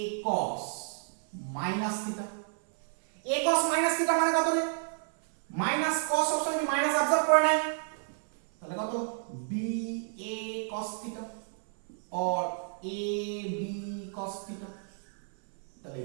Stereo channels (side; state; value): left; silent; 56 dB below the other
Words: cos minus theta. a cos minus theta মানে কত রে, মাইনাস cos সবসময় কি মাইনাস অবজার্ভ করে নেয়, তাহলে কত, b a cos থিটা और a b cos থিটা। তাহলে